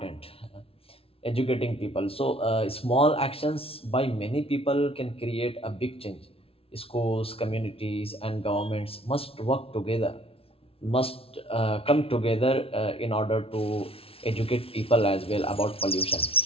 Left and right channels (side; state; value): right; late; 0.27 ms